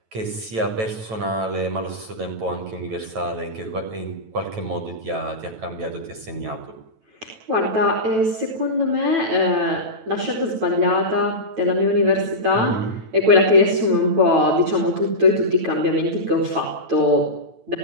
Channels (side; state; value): left; late; 9.1 ms